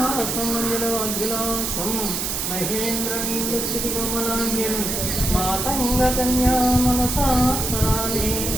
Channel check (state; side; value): noise; right; hiss, 1 dB below the sound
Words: महेन्द्रनीलकमलाङ्ग्यं मातङ्गकन्या मनसा स्मरामि